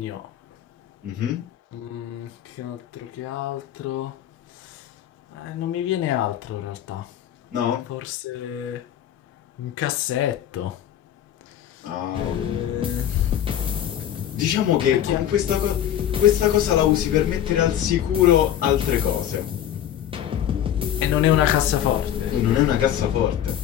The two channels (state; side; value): quieter; right; 10.8 dB